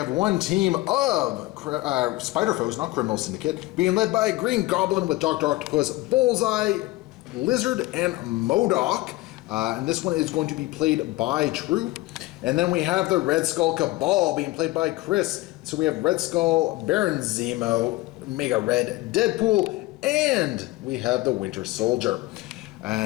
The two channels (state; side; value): quieter; right; 19.3 dB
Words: one team of Spider Foes, not Criminal Syndicate, being led by Green Goblin with Dr. Octopus, Bullseye, Lizard, and Modoc. And this one is going to be played by Troop. And then we have the Red Skull Cabal being played by Chris. So we have Red Skull, Baron Zemo, Mega Red, Deadpool, and we have the Winter Soldier.